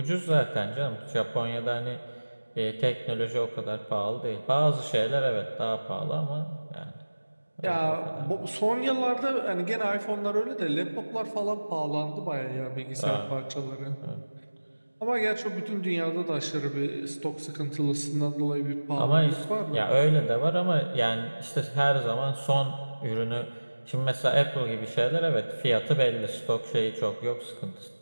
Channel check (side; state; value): both; inverted; correlation -1.00